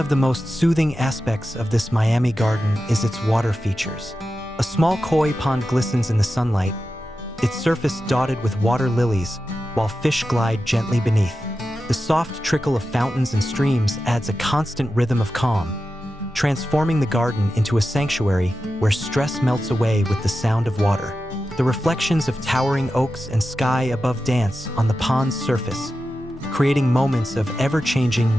the most soothing aspects of this Miami garden is its water features. A small koi pond glistens in the sunlight, its surface dotted with water lilies, while fish glide gently beneath. The soft trickle of fountains and streams adds a constant rhythm of calm, transforming the garden into a sanctuary where stress melts away with the sound of water. The reflections of towering oaks and sky above dance on the pond's surface, creating moments of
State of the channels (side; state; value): both; normal; correlation 0.92